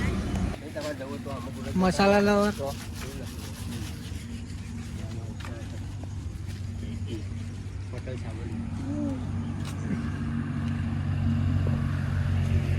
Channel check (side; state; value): both; identical; correlation 1.00